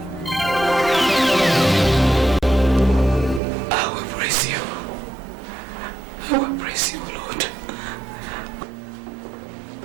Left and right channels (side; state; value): left; drops out; at 3.4 s